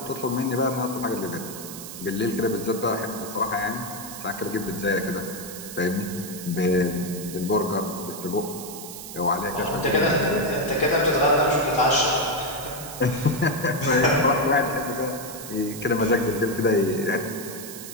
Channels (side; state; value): right; noise; hiss, 11 dB below the sound